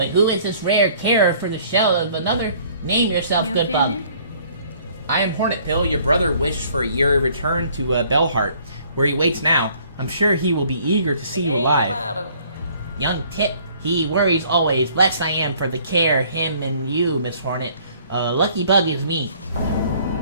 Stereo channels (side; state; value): both; inverted; correlation -0.58